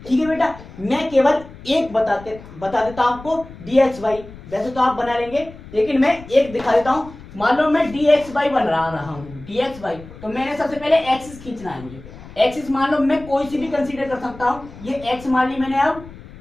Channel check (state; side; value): noise; left; rumble, 17 dB below the sound